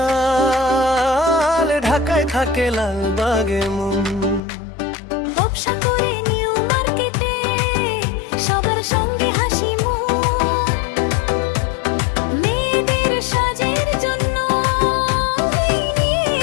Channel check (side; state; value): right; drops out; at 4.4 s